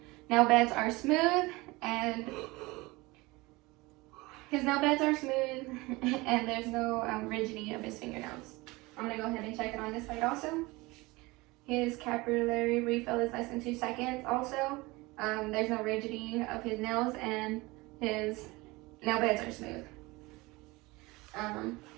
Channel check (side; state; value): left; quieter; 22.6 dB